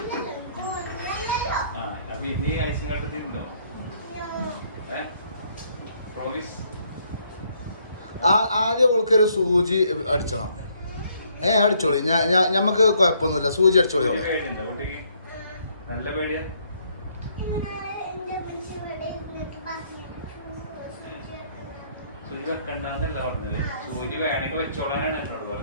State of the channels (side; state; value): both; inverted; correlation -0.68